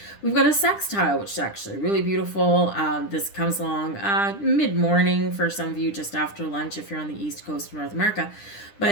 We've got a sextile, which is actually really beautiful. This comes along mid-morning for some of you, just after lunch if you're on the East Coast of North America.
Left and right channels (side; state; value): right; late; 10 ms